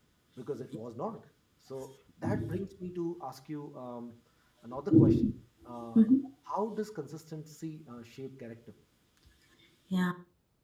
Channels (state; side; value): identical; both; correlation 1.00